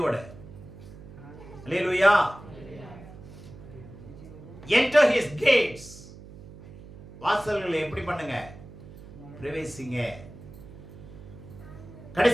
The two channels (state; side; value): noise; right; hum, 17 dB below the sound